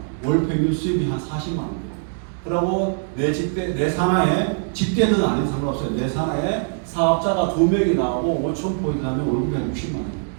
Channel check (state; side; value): silent; left; digital silence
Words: 월 평균 수입이 한 40만 원 돼요. 그리고 내 산하에 직대는 아닌 상관없어요. 내 산하에 사업자가 2명이 나오고 5,000포인트 하면 월급이 한 60만 원 돼요.